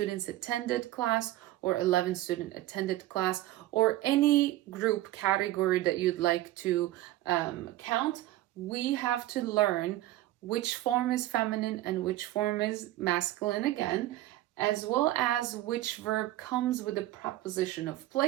attended class or 11 student attended class or any group category that you'd like to count. We have to learn which form is feminine and which form is masculine again, as well as which verb comes with the preposition of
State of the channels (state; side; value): quieter; left; 15.6 dB